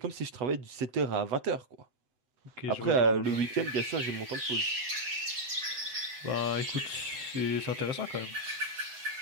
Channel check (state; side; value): late; left; 7.9 ms